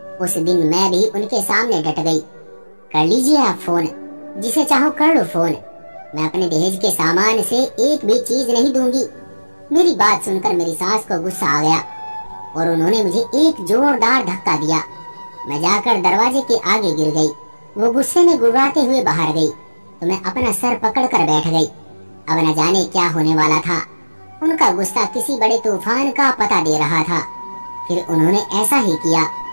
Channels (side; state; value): both; inverted; correlation -1.00